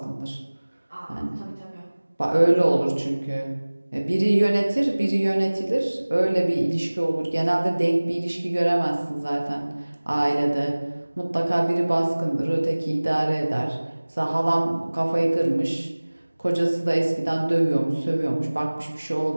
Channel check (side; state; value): both; inverted; correlation -1.00